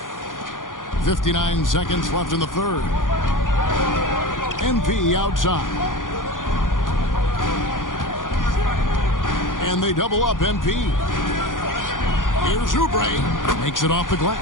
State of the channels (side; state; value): right; late; 0.89 ms